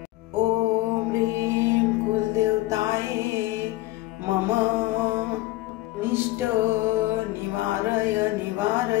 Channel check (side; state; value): right; quieter; 17.9 dB